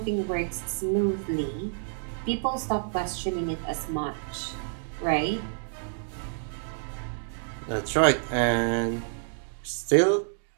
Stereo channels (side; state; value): left; silent; digital silence